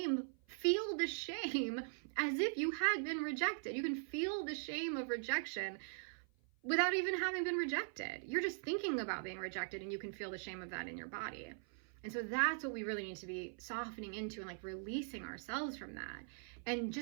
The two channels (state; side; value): silent; left; 50 dB below the other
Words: as if you had been rejected. You can feel the shame of rejection without even having been rejected. You're just thinking about being rejected, and you can feel the shame of that in your body. And so that's what we really need to be softening into, and like releasing ourselves from that and